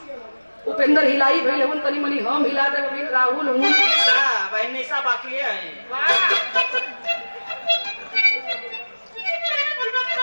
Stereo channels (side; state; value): both; inverted; correlation -1.00